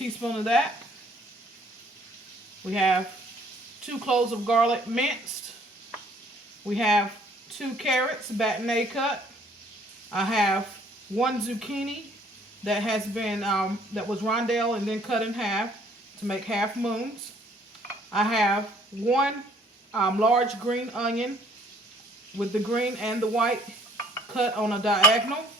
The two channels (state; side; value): normal; both; correlation 0.60